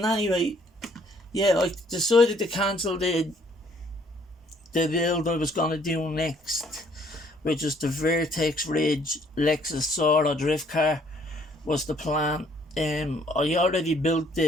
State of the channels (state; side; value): normal; both; correlation 0.63